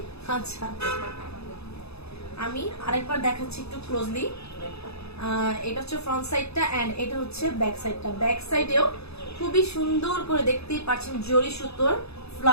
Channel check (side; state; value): right; late; 0.79 ms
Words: আচ্ছা আমি আরেকবার দেখাচ্ছি একটু ক্লোজলি। এটা হচ্ছে ফ্রন্ট সাইডটা এন্ড এটা হচ্ছে ব্যাক সাইডটা। ব্যাক সাইডেও খুবই সুন্দর করে দেখতেই পাচ্ছেন জরি সুতোর